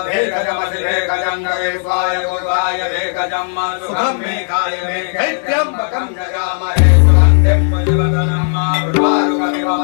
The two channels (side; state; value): right; silent; digital silence